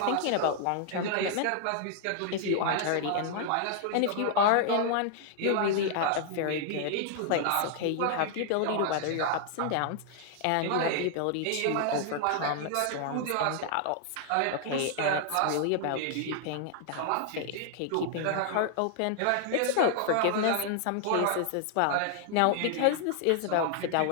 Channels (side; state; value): both; different; correlation 0.00